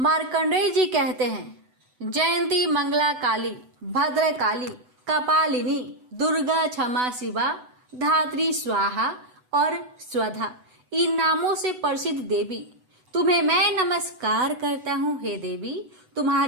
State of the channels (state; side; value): late; left; 8.0 ms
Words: जी कहते हैं, जयंती मंगला काली, भद्र काली, कपालिनी, दुर्गा, क्षमा शिवा, धात्री, स्वाहा और स्वधा, इन नामों से प्रसिद्ध देवी, तुम्हें मैं नमस्कार करता हूँ। हे देवी,